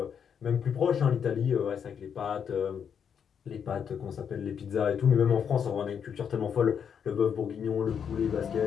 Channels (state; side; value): quieter; right; 7.5 dB